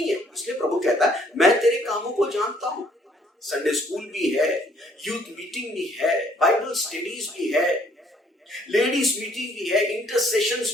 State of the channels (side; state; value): both; normal; correlation 0.63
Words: है, इसलिए प्रभु कहता है मैं तेरे कामों को जानता हूं। संडे स्कूल भी है, यूथ मीटिंग भी है, बाइबल स्टडीज भी है, लेडीज मीटिंग भी है,